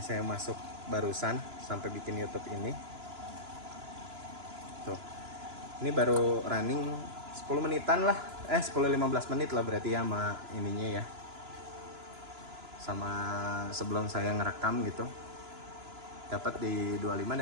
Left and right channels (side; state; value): left; late; 2.9 ms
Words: masuk barusan sampai bikin YouTube ini. Tuh. Ini baru running 10 menitan lah. 10-15 menit lah berarti ya sama ininya ya. Sama sebelum saya ngerekam gitu. Dapat di 25